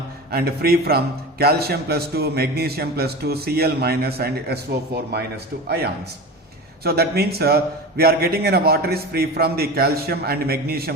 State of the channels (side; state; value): both; normal; correlation 0.29